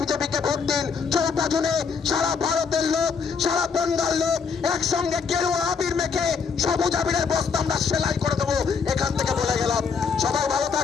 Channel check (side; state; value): right; quieter; 5.7 dB